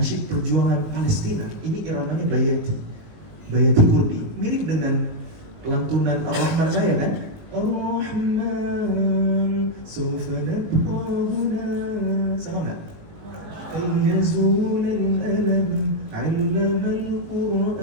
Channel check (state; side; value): late; left; 19 ms